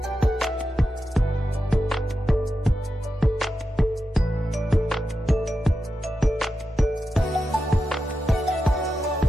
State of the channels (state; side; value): normal; both; correlation 0.90